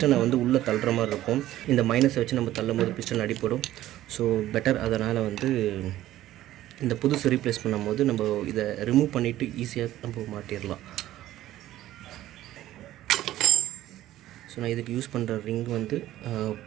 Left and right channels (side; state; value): left; quieter; 14.2 dB